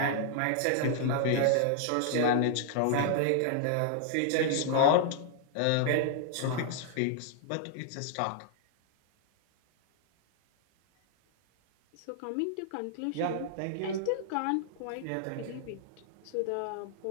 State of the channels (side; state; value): both; different; correlation -0.01